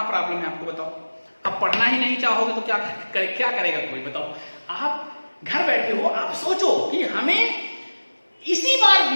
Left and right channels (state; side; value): inverted; both; correlation -1.00